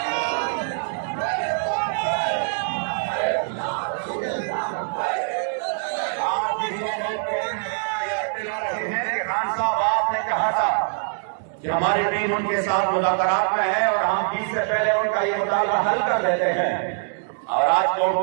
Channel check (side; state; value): left; silent; digital silence